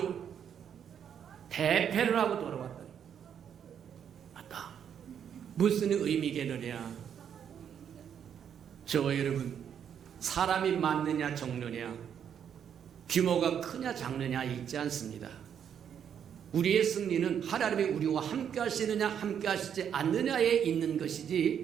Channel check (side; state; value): left; quieter; 8.5 dB